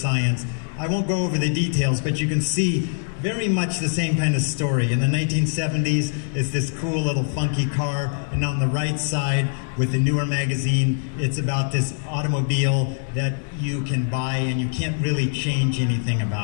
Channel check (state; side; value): silent; right; digital silence